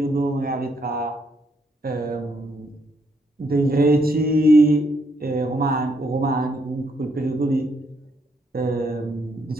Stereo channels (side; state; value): both; normal; correlation 0.73